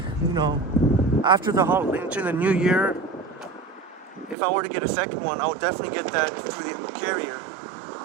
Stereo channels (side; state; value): left; drops out; at 4.4 s